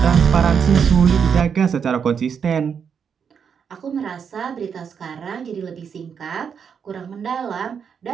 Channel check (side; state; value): left; quieter; 7.0 dB